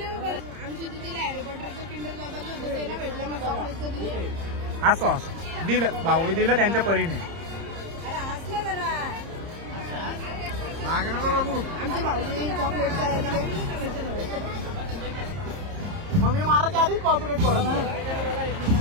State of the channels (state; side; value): late; left; 30 ms